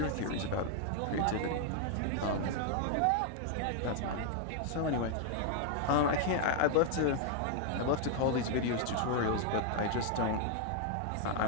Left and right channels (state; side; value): different; both; correlation 0.00